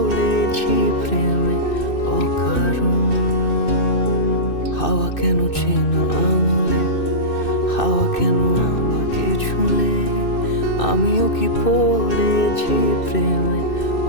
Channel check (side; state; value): right; late; 2.6 ms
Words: প্রেমে অকারণ। হাওয়া কেন চেনা আঙুলে, হাওয়া কেন আমাকে ছুলে, আমিও কি পড়েছি প্রেমে